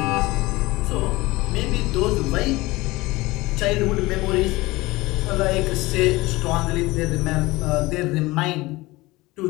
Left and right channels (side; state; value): right; quieter; 20.7 dB